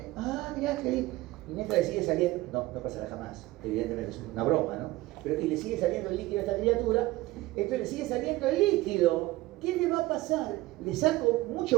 Mirá qué lindo. Y mientras le sigue saliendo, no pasará jamás, evidentemente es una broma, ¿no? Pero y le sigue saliendo el líquido a esta criatura, entonces le sigue saliendo el líquido. ¿Qué le va a pasar? Le saco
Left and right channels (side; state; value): left; quieter; 18.6 dB